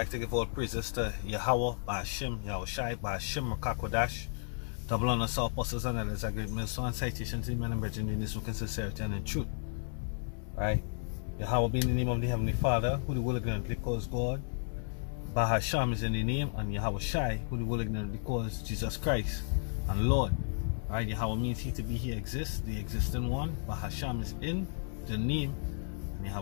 to give all praises to Yahweh, Ba'ashim, Yahushai, Ba'ashim, Rakakodash, double honor to all apostles and elders, a great millstone and citation to the men and brethren in this book in sincerity and in truth. Right? Yahweh be in the name of the Heavenly Father, who the will ignorantly calls God. Bahasham is in the name, and Yahushai, who the will ignorantly calls Jesus Christ and Lord. Right? Yahweh means he to be, he exists, the existing one. Bahasham is in the name, and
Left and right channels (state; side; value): silent; right; digital silence